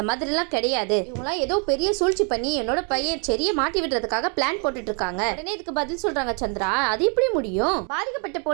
மாதிரி எல்லாம் கிடையாது, இவங்களாம் ஏதோ பெரிய சூழ்ச்சி பண்ணி என்னோட பையன் செரிய மாட்டி விடுறதுக்காக பிளான் போட்டுட்டு இருக்காங்க. உடனே இதுக்கு பதில் சொல்றாங்க சந்திரா, அது எப்படி முடியும்? பாதிக்கப்பட்ட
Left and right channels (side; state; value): left; quieter; 38.6 dB